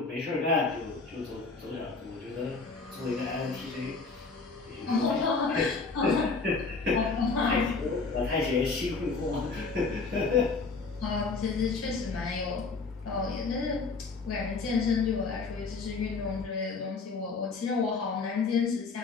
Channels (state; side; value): quieter; right; 4.3 dB